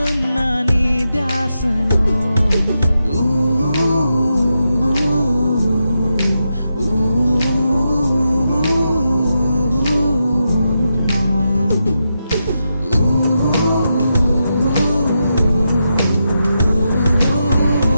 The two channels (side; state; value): both; inverted; correlation -0.86